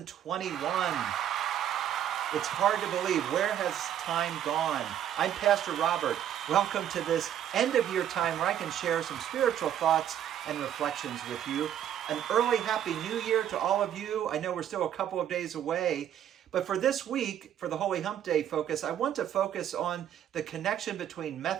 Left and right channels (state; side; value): quieter; left; 10.4 dB